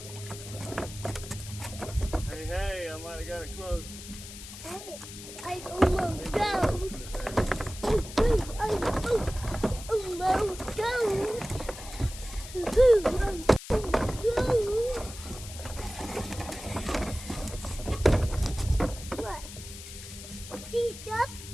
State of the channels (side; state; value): left; noise; hiss, 13 dB below the sound